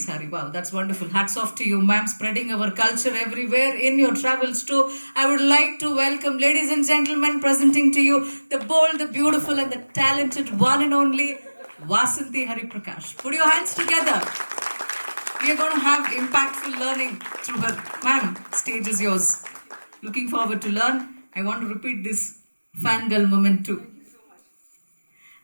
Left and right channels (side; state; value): both; inverted; correlation -1.00